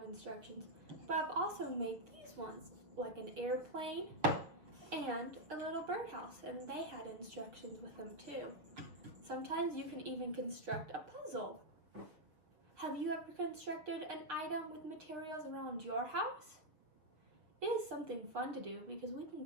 instructions, but I've also made these ones, like an airplane and a little birdhouse, and they had instructions with them too. Sometimes you can even construct a puzzle. Have you ever constructed an item with materials around your house? It is something fun to do because we can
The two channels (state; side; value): late; left; 6.3 ms